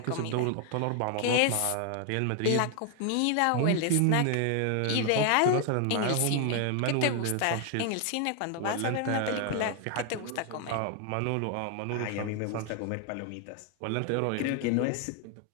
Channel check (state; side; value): different; both; correlation 0.00